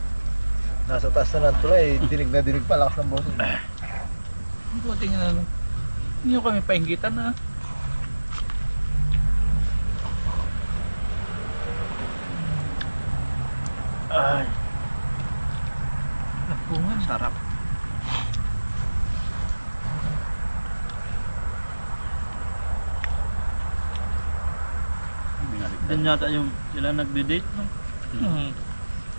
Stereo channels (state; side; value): inverted; both; correlation -1.00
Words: Nasa taas na ng tulay, dinig na dinig pa, lakas ng boses. buti nga ano. Hindi nyo kami painggitan na. Ay, Lapungan. sarap. Doon yata yung sila nagde-date, no? Hmm.